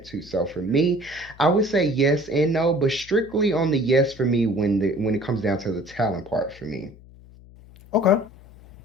too. So for me, I would say yes and no, but strictly on the yes for me when it comes down to the talent part for me. Okay.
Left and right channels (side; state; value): left; noise; hum, 22 dB below the sound